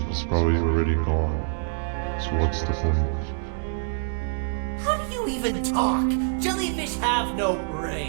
is probably already gone. So what's the point? How do you even talk? Jellyfish have no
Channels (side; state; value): left; silent; digital silence